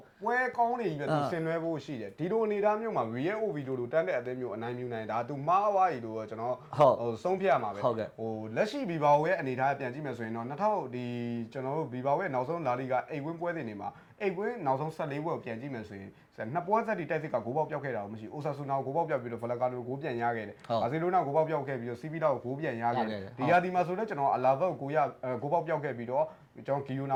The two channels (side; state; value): both; identical; correlation 1.00